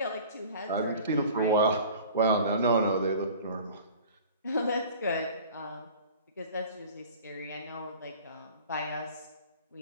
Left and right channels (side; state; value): both; inverted; correlation -0.43